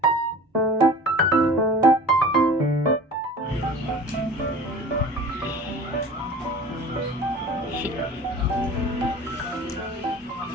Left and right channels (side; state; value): both; normal; correlation 0.41